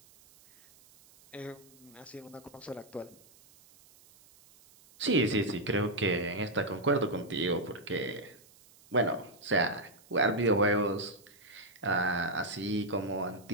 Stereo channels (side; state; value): right; noise; hiss, 26 dB below the sound